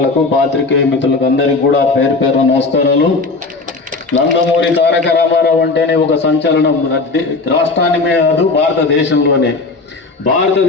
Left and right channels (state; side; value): quieter; right; 3.7 dB